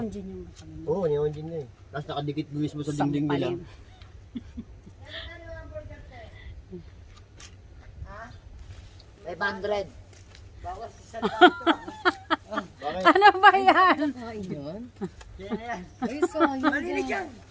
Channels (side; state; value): both; identical; correlation 1.00